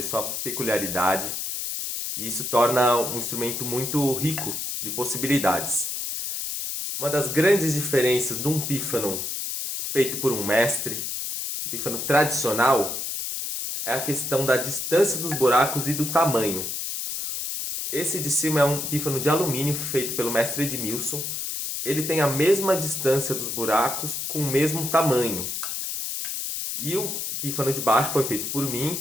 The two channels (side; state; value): left; noise; hiss, 3 dB below the sound